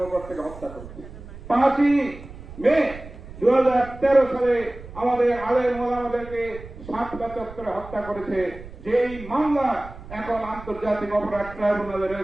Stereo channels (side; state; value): right; noise; rumble, 15 dB below the sound